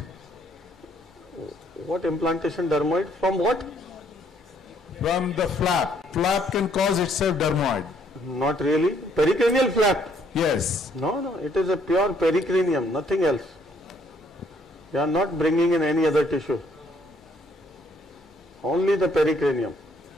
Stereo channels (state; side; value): normal; both; correlation 0.67